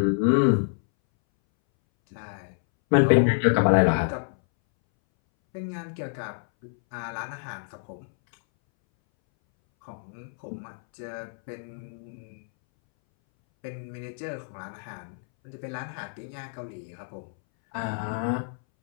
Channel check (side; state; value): right; silent; 60 dB below the other